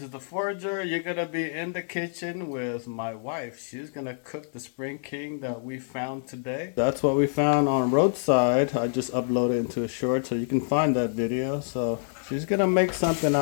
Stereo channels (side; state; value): right; silent; 60 dB below the other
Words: is the Forager. You're gonna be in the kitchen with my wife. She's gonna cook the Spring King that we found today. That's what we found on roadside. I just uploaded into a short so you can find that video. So she's gonna make something